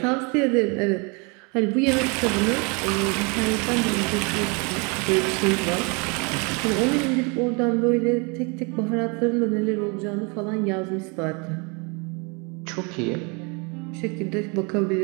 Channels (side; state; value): left; quieter; 31.5 dB